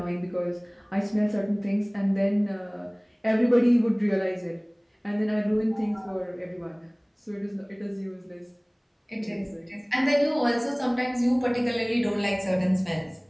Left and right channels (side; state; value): both; identical; correlation 1.00